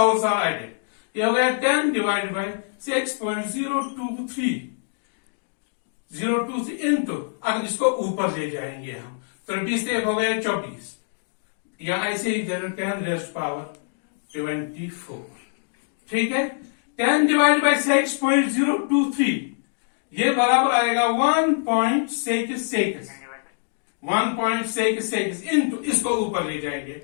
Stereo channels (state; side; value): silent; right; digital silence